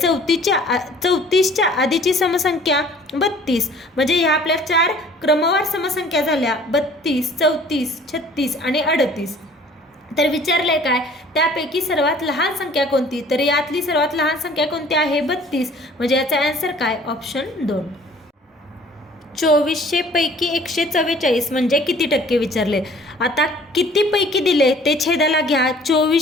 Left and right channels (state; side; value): normal; both; correlation 0.52